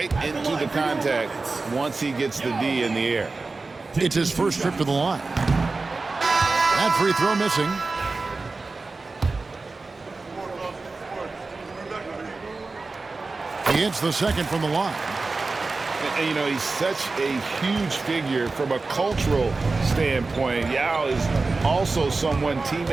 into the contact once he gets the D in the air. It's his first trip to the line. That free throw missing. He hits the second from the line. And, you know, he's such a huge figure from a cultural standpoint. Yao is also someone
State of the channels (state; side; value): quieter; left; 3.8 dB